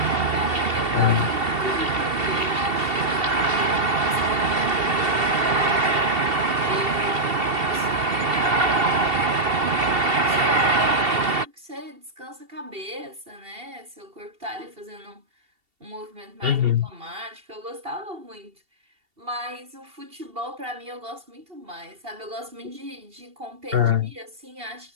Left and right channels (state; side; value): late; left; 2.7 ms